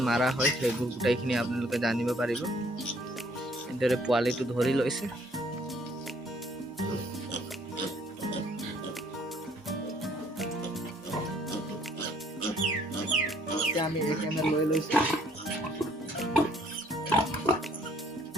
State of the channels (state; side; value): normal; both; correlation 0.62